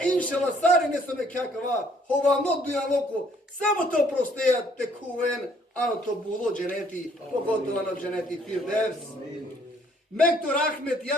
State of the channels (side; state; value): both; normal; correlation 0.63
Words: inšala, sari nesome kakava, hova not dujan loko, samo to prosteja te kuven, ano to bulo dženeti, pogotovo ano dženeti firdevs. Mektor Ahmet,